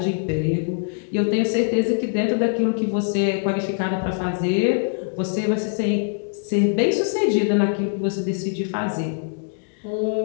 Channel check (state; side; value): silent; right; digital silence